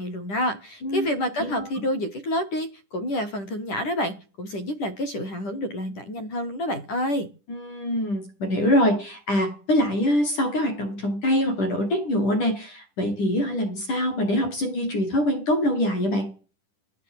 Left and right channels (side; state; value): right; late; 10 ms